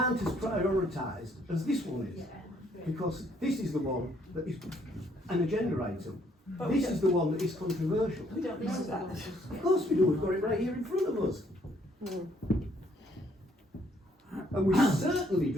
as prioritised as this one is, because this is the one that is an agenda item. But This is the one that is controversial. We don't know that. Of course we do, we've got it right here in front of us. And we certainly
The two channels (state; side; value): normal; both; correlation 0.67